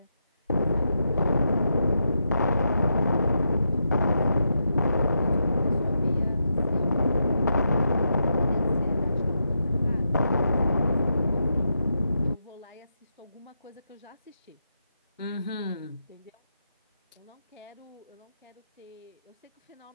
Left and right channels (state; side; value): inverted; both; correlation -0.84